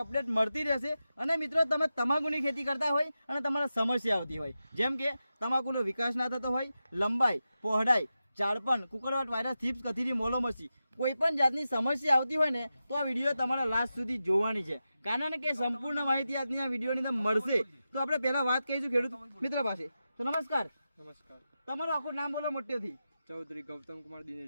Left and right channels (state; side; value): inverted; both; correlation -0.91